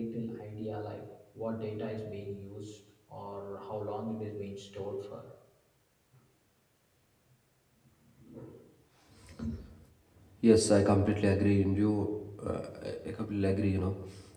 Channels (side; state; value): both; identical; correlation 1.00